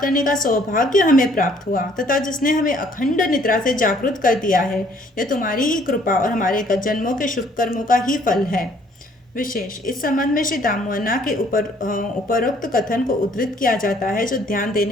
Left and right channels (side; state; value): both; normal; correlation 0.61